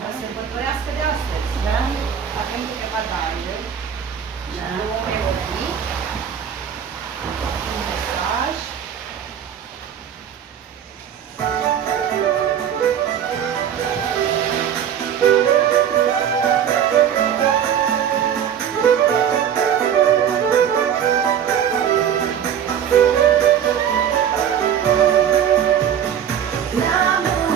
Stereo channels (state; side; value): quieter; left; 8.9 dB